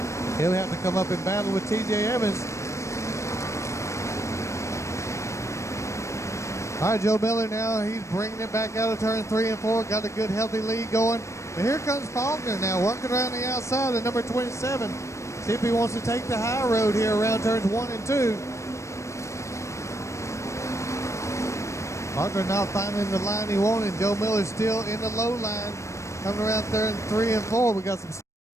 He'll have to come up and battle with TJ Evans. All right, Joe Miller now, he's bringing it back out of turn 3 and 4. Got a good, healthy lead going. But here comes Faulkner now, working around the outside of number 27. See if he wants to take the high road here around turns 1 and 2. Faulkner not finding the line he wanted. Joe Miller still in the low line, coming around turn 3 and 4. We got some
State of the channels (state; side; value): late; right; 0.14 ms